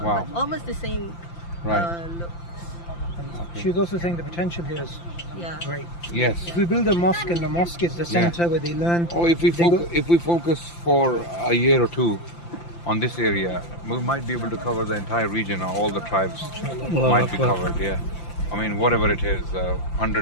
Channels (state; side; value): late; right; 5.8 ms